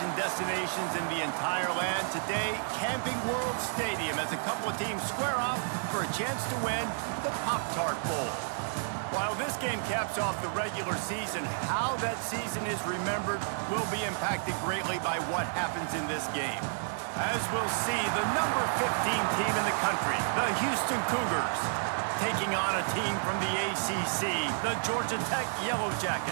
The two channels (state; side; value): silent; left; digital silence